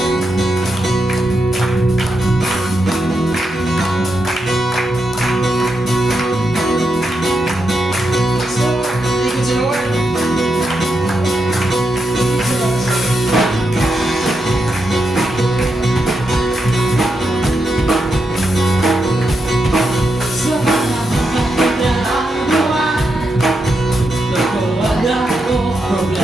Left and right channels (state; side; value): normal; both; correlation 0.84